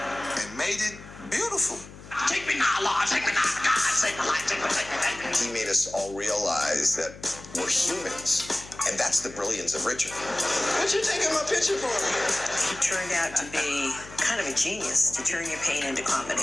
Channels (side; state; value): left; noise; hum, 17 dB below the sound